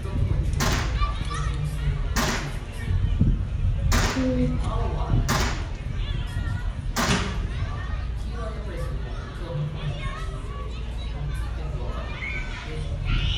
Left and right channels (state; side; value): identical; both; correlation 1.00